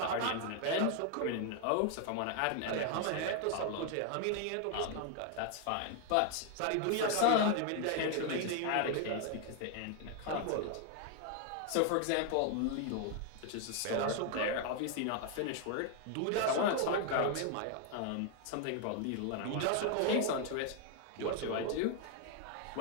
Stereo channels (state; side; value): different; both; correlation 0.00